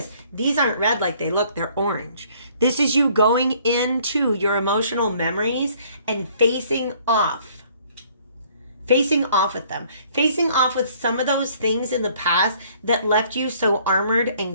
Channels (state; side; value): inverted; both; correlation -0.60